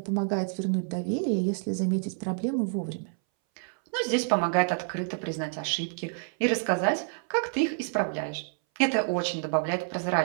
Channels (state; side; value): silent; left; 59 dB below the other